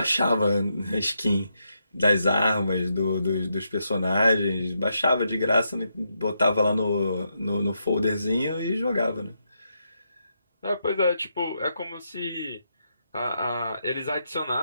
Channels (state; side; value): inverted; both; correlation -0.81